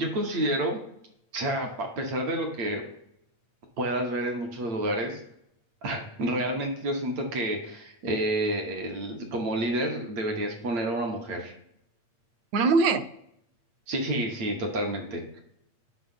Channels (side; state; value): left; late; 8.7 ms